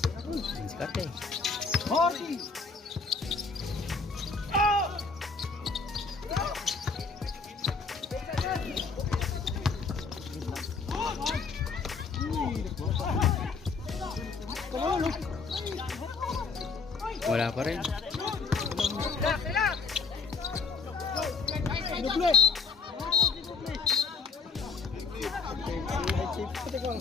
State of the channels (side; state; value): right; quieter; 4.7 dB